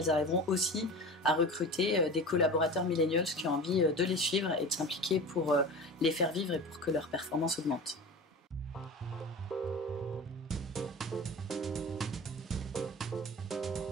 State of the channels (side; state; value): both; normal; correlation 0.33